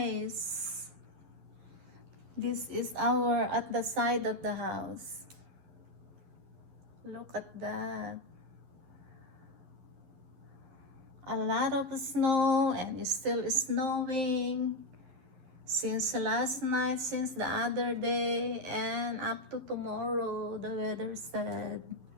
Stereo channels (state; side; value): late; left; 11 ms